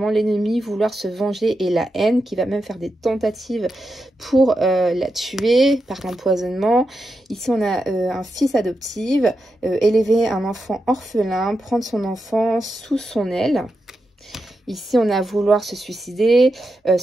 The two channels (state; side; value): normal; both; correlation 0.87